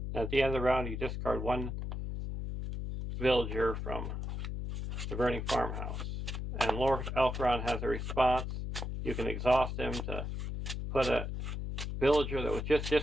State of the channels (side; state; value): left; noise; hum, 4 dB below the sound